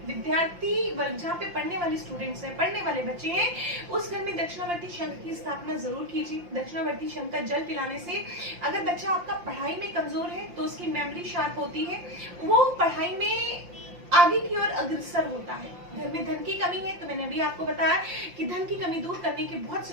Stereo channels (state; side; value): late; left; 5.7 ms